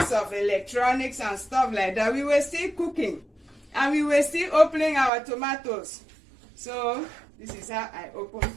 of electronics and stuff like that, we were still cooking and we were still opening our tomatoes. So this is how I open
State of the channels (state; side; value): drops out; left; at 5.1 s